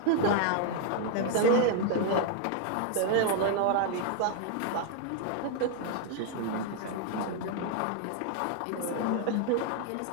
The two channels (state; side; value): different; both; correlation 0.00